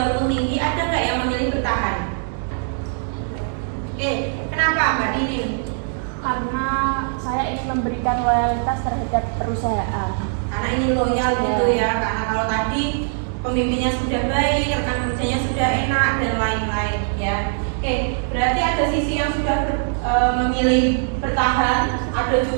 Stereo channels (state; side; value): silent; left; 65 dB below the other